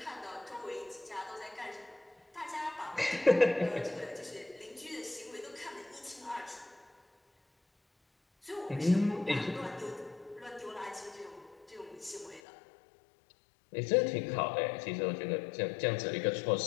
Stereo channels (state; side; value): drops out; right; at 12.4 s